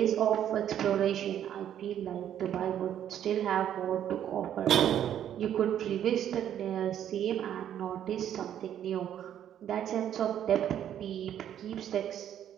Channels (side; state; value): left; quieter; 10.3 dB